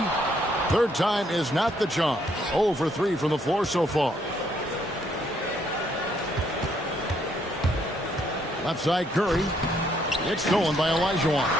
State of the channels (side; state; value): both; normal; correlation 0.70